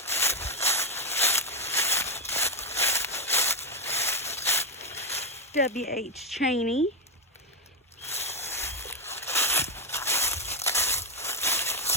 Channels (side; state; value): both; normal; correlation 0.05